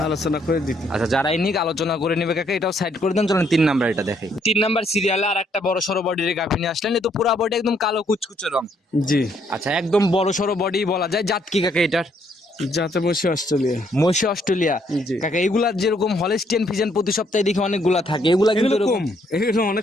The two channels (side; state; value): both; normal; correlation 0.70